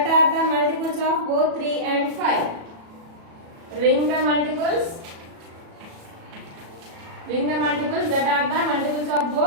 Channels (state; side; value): late; left; 37 ms